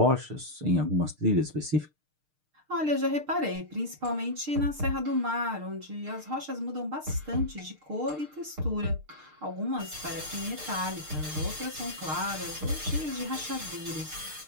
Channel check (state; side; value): late; left; 6.6 ms